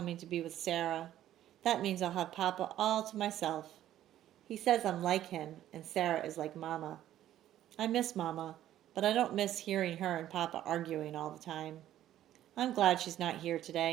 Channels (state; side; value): quieter; left; 12.5 dB